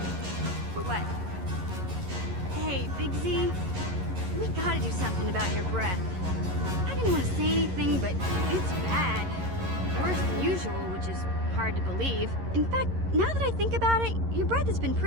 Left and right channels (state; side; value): late; left; 11 ms